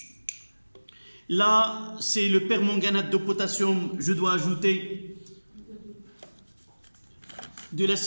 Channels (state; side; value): inverted; both; correlation -1.00